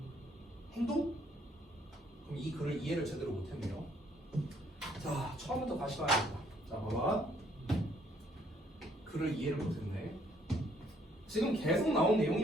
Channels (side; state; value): both; normal; correlation 0.66